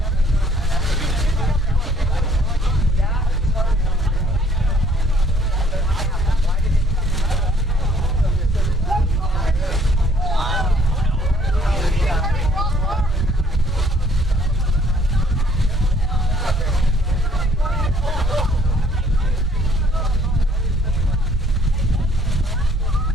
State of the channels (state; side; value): normal; both; correlation 0.62